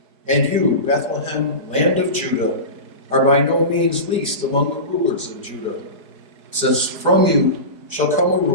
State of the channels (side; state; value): left; late; 4.6 ms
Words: 'And you, Bethlehem, land of Judah, are by no means least among the rulers of Judah, since from you shall come a